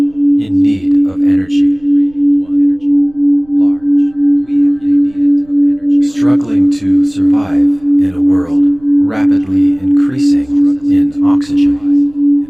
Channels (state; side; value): noise; right; rumble, 28 dB below the sound